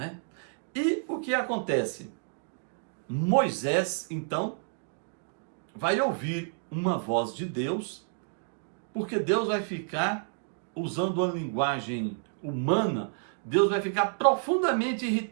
E o que acontece? Moisés, então, vai ouvir uma voz de Deus, porque Deus vai ficar, usando uma linguagem humana, Deus vai ficar profundamente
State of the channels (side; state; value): left; silent; digital silence